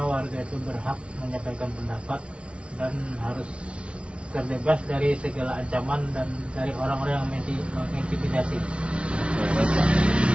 warga itu berhak menyampaikan pendapat dan harus terbebas dari segala ancaman dan dari orang-orang yang mengintimidasi. Baik, Pak.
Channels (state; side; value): late; left; 0.059 ms